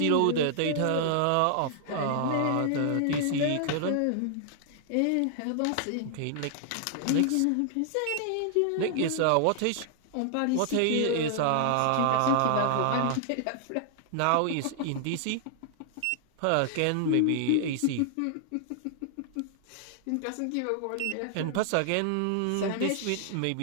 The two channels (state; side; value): different; both; correlation -0.01